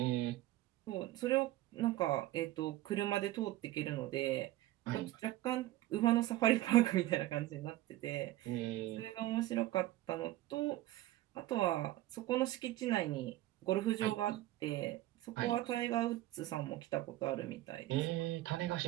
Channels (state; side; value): quieter; left; 15.8 dB